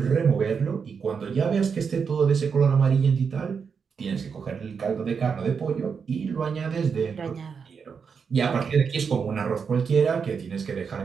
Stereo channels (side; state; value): left; quieter; 6.1 dB